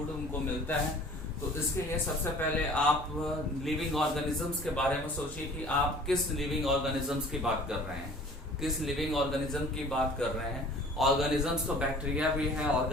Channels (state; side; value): normal; both; correlation 0.48